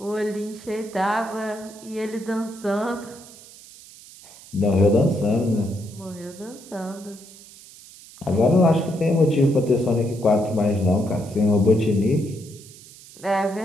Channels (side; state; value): right; noise; hiss, 20 dB below the sound